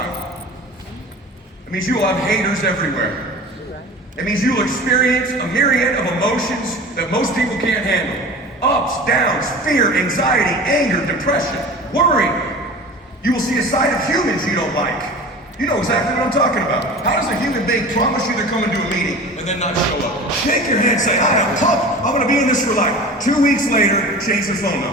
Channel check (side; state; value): both; normal; correlation 0.37